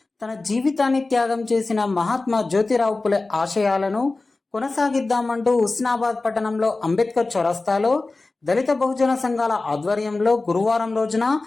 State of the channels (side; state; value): right; quieter; 3.4 dB